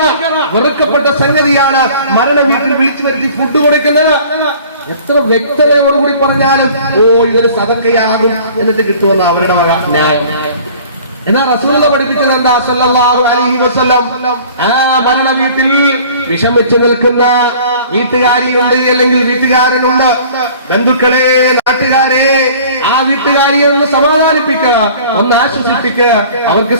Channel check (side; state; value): both; inverted; correlation -0.48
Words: വെറുക്കപ്പെട്ട സംഗതിയാണ് മരണ വീട്ടിൽ വിളിച്ചു വരുത്തി ഫുഡ് കൊടുക്കുന്നത്. എത്ര വ്യക്തതയോടുകൂടി പറഞ്ഞാലും ഇതൊരു സദഖയാകും എന്നിട്ട് കിട്ടുമെന്ന് അവരുടെ വക ന്യായം. എന്നാൽ റസൂലുള്ള പഠിപ്പിച്ചത് എന്താ? സല്ലല്ലാഹു അലൈഹി വസല്ലം ആ മരണ വീട്ടിൽ വിഷമിച്ചു നിൽക്കുന്ന വീട്ടുകാരിയുണ്ട്, അല്ലെങ്കിൽ വീട്ടുകാരനുണ്ട്, ബന്ധുക്കളെ, നാട്ടുകാരെ, ആ വീട്ടുകാരിയെ ഒന്ന് സമാധാനിപ്പിക്കുക, ഒന്ന് ആശ്വസിപ്പിക്കുക. അവർക്ക്